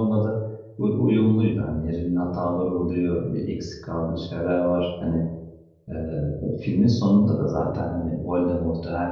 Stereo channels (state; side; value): identical; both; correlation 1.00